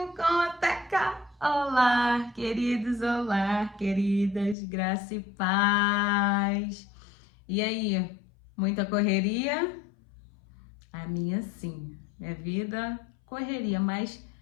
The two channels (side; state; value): right; drops out; at 4.5 s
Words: com Teca. Olá, queridos, olá, queridas, graça e paz. E aí, muita correria? A minha sim, minha vida correria, mas